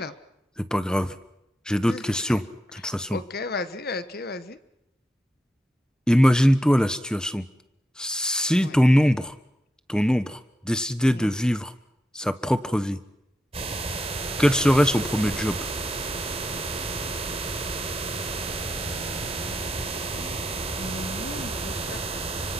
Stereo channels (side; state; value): both; normal; correlation 0.86